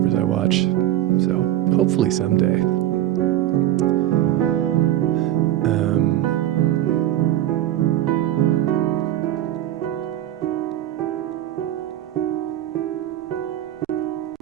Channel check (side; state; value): left; quieter; 13.0 dB